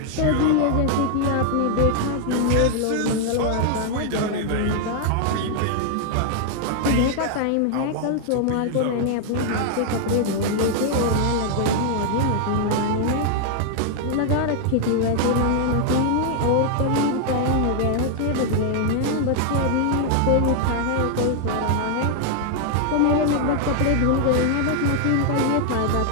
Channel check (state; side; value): different; both; correlation 0.00